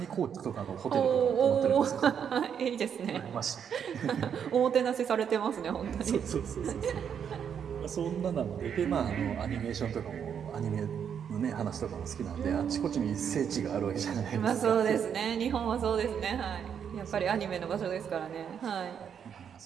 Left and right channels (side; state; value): left; quieter; 7.9 dB